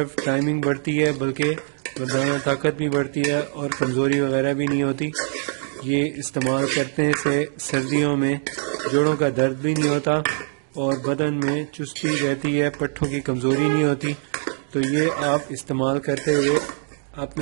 ٹائمنگ بڑھتی ہے بلکہ مردانہ طاقت بھی بڑھتی ہے، اور کمزوری وغیرہ بھی نہیں ہوتی۔ یہ استعمال کرنے سے سردیوں میں جوڑوں کا درد بھی نہیں ہوتا، اور بدن میں چستی رہتی ہے، پٹھوں کی کمزوری نہیں ہوتی۔ تو یہ آپ استعمال کرتے ہوئے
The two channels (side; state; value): left; silent; digital silence